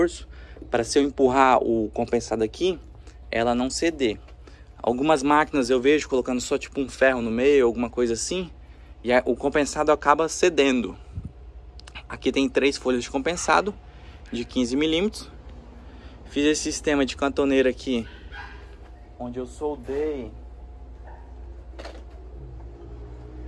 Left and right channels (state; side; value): identical; both; correlation 1.00